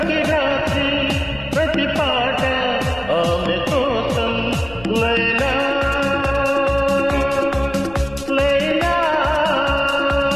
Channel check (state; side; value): noise; left; rumble, 19 dB below the sound